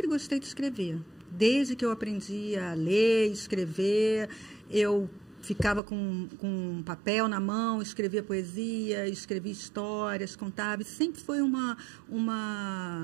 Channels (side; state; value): left; drops out; at 5.8 s